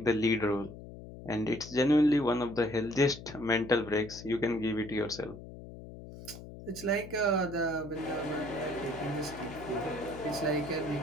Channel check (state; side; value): noise; left; hum, 14 dB below the sound